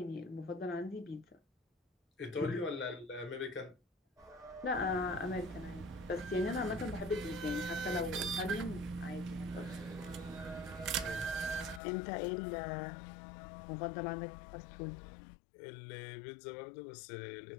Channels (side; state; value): right; drops out; at 11.8 s